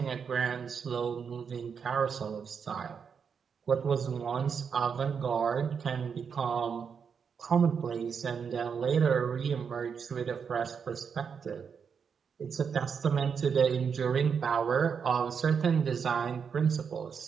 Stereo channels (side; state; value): left; quieter; 6.5 dB